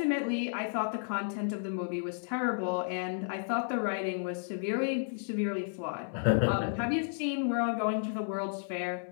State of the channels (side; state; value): right; silent; digital silence